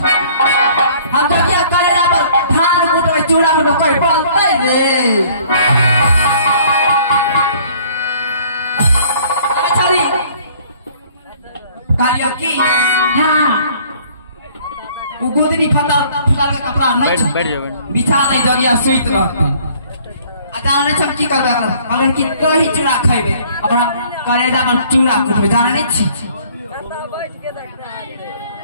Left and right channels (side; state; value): both; inverted; correlation -0.56